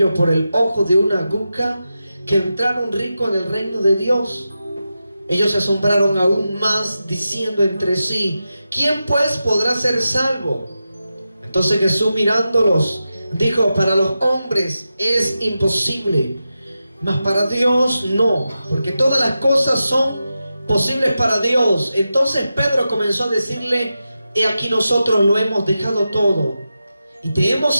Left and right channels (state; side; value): inverted; both; correlation -0.91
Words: por el ojo de una aguja que entrar un rico en el reino de Dios. Ellos se asombraron aún más, diciendo entre sí: ¿quién pues podrá ser salvo? Entonces Jesús, mirándolos, dijo: para los hombres es imposible, mas para Dios no, porque todas las cosas son posibles para Dios. Entonces Pedro comenzó a decirle: he aquí nosotros lo hemos dejado todo y te hemos